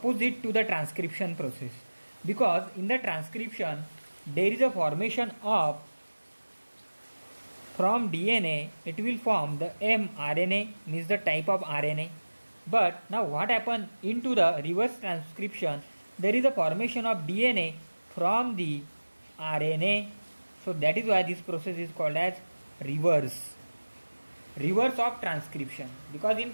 to the transcription process, because in the transcription there is a formation of from DNA, it will form the mRNA, means the type of RNA. But now what happens into the reverse transcription, there is a formation of DNA from the RNA. So that is why this process is called as reverse of transcription, because in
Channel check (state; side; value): inverted; both; correlation -1.00